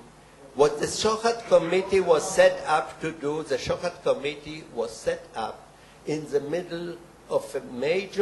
what the Shochat Committee was set up to do, the Shochat Committee was set up in the middle of a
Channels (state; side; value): identical; both; correlation 1.00